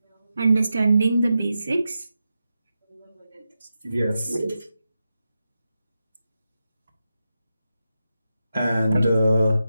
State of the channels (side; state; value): both; inverted; correlation -0.89